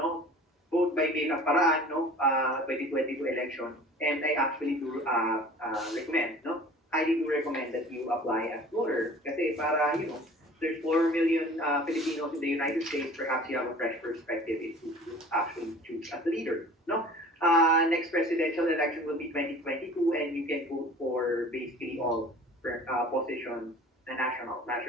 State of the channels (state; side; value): normal; both; correlation 0.45